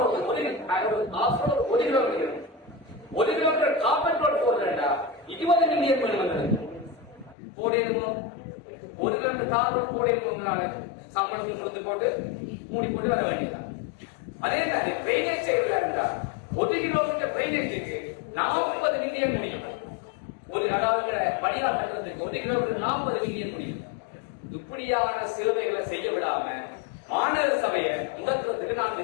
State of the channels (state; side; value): drops out; right; at 7.4 s